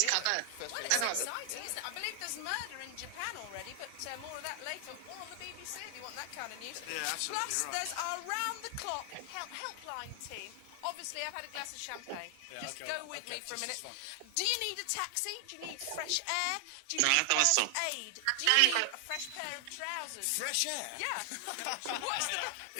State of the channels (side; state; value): both; different; correlation 0.00